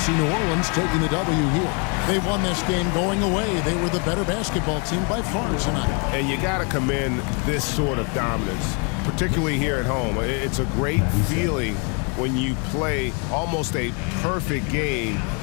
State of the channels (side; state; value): right; quieter; 36.0 dB